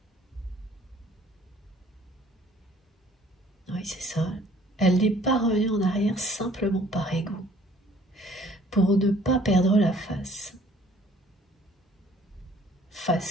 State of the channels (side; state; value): both; normal; correlation 0.57